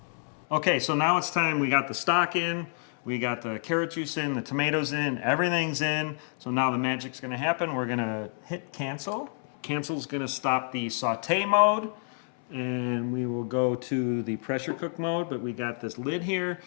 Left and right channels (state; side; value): silent; right; 59 dB below the other